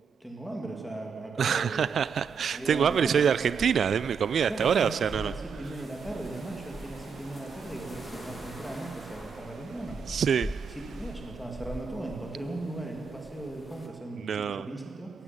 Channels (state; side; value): quieter; left; 6.0 dB